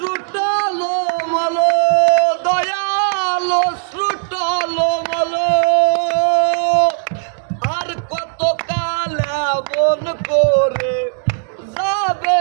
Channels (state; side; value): silent; left; digital silence